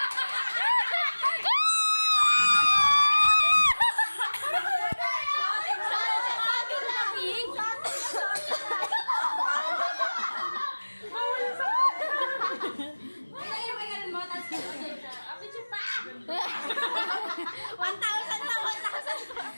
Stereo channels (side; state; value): both; inverted; correlation -1.00